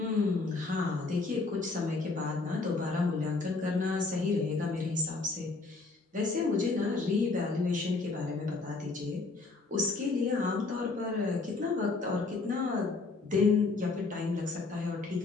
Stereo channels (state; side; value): quieter; right; 3.8 dB